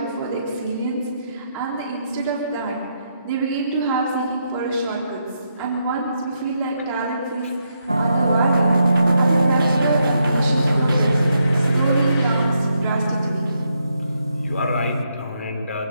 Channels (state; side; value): inverted; both; correlation -0.79